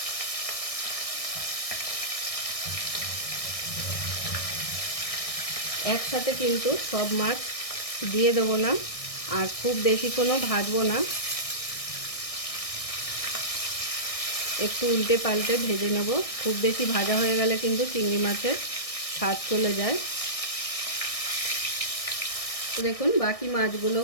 একসাথে কিন্তু সব মাছ দিয়ে দেবো না, আর খুব বেশিক্ষণও ভাজবো না, একটু উল্টে পাল্টে ভেজে নেব। খুব বেশি ভাজা হয়ে গেলে কিন্তু চিংড়ি মাছের স্বাদ চলে যায়। তো দেখুন বাকি মাছগুলো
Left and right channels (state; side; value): late; right; 1.6 ms